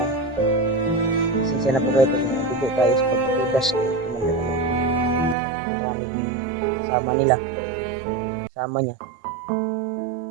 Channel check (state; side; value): drops out; left; at 5.4 s